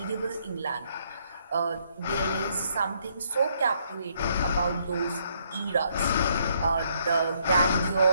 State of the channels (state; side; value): inverted; both; correlation -0.71